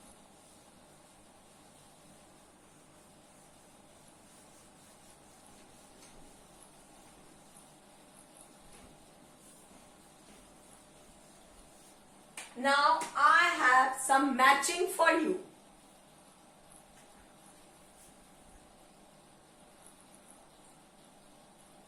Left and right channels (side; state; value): both; identical; correlation 1.00